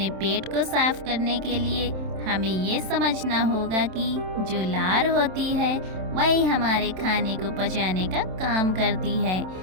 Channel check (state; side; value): late; left; 27 ms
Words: पेट को साफ करने के लिए हमें ये समझना होगा कि जो लार होती है वही हमारे खाने को पचाने का काम करती है।